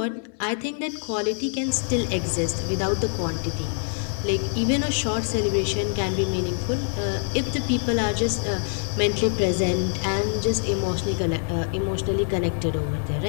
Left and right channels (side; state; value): right; silent; digital silence